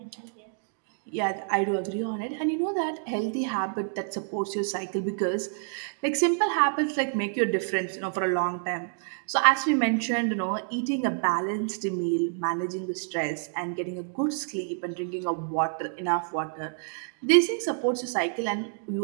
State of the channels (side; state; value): left; silent; digital silence